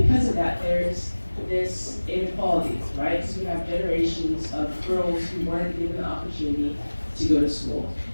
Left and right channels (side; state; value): both; inverted; correlation -1.00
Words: because of that, there's this inequality, right? Because we have generations of girls who weren't given the opportunity to go to school.